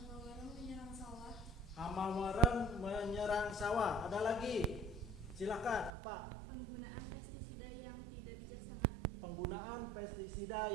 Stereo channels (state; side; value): drops out; left; at 5.9 s